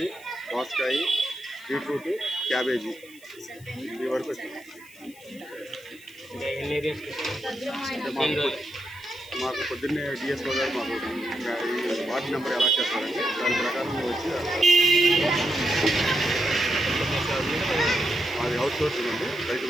దోసకాయ, బీట్రూట్, క్యాబేజీ ఈ వరకు వచ్చింది. మాకు పొద్దున్నే డిఎస్ఓ గారు మాకు ఈ వార్డు నెంబర్ ఎలా చేస్తారండి, దాని ప్రకారం వచ్చి మాది అవుట్ సోర్సింగ్ అండి, రైతు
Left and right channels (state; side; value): noise; left; hiss, 23 dB below the sound